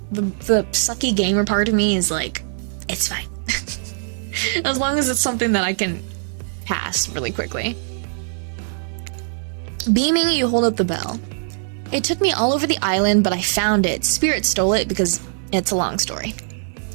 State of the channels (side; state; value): left; silent; digital silence